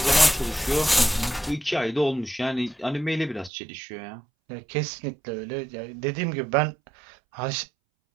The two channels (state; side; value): drops out; left; at 3.5 s